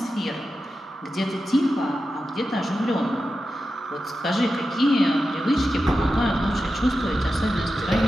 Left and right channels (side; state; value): both; normal; correlation 0.91